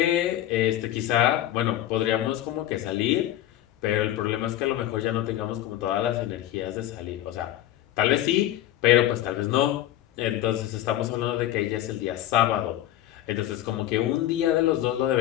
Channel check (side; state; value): right; quieter; 13.3 dB